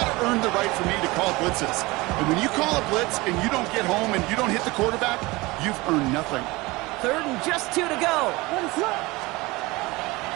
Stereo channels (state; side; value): quieter; left; 22.2 dB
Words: to earn the right for me to call blitzes. And when you call a blitz and you don't get home and you don't hit the quarterback, you've earned nothing. 3rd and just 2 to go.